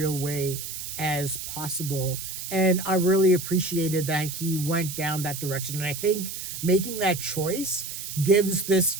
way as possible. And I really appreciated that he went down that direction. And I think making that choice gives this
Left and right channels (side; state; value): right; noise; hiss, 7 dB below the sound